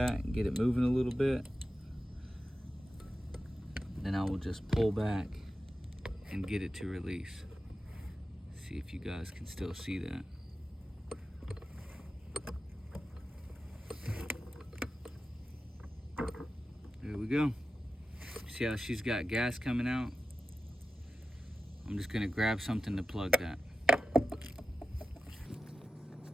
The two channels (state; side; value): normal; both; correlation 0.93